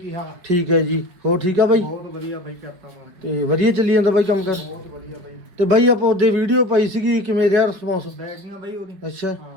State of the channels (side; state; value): left; late; 5.3 ms